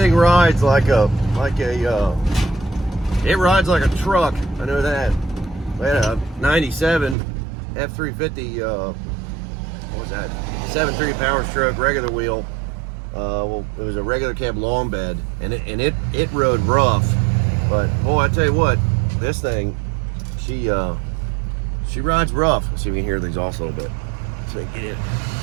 rides like a it rides like a truck. I know that. We had a 97 F350. What was that? 7.3 power stroke, regular wheel. Well, it was a regular cab long bed, and it rode rough. But boy, I tell you what, this thing, she rides rough. Let's see if we can hear the exhaust a little bit. So we can get it.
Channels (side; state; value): left; drops out; at 7.2 s